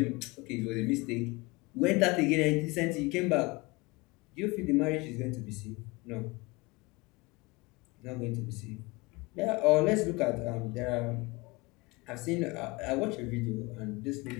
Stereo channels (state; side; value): quieter; right; 24.4 dB